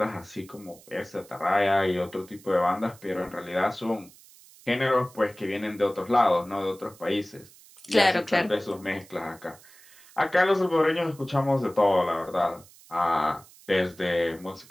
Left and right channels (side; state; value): right; noise; hiss, 24 dB below the sound